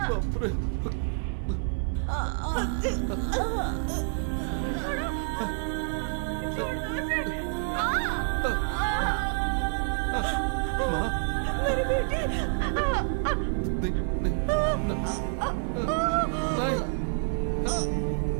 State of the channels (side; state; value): left; silent; digital silence